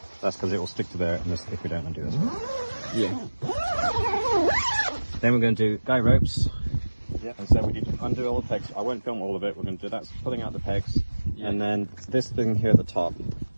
That's because it will stick to there if we don't undo this one. Yeah. Then we're going to do guy ropes. Yeah. And so we need to undo all the pegs. I won't film all of it. We're going to do that, pulling out the pegs, and then this thing here at the top.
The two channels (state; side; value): inverted; both; correlation -1.00